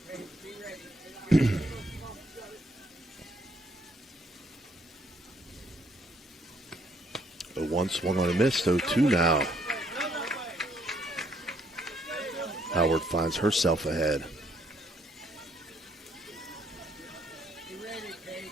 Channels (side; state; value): both; normal; correlation 0.69